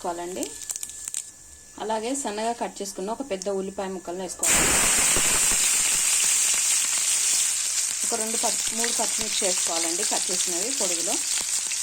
అలాగే సన్నగా కట్ చేసుకున్న ఒక పెద్ద ఉల్లిపాయ ముక్కలను వేసుకోవాలి. ఒక 3 పచ్చిమిర్చి వేసుకోవాలండి, కట్ చేసినవి పొడుగులో.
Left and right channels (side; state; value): both; identical; correlation 1.00